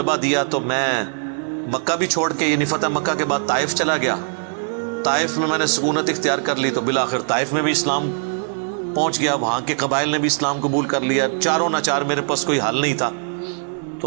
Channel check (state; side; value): silent; left; 59 dB below the other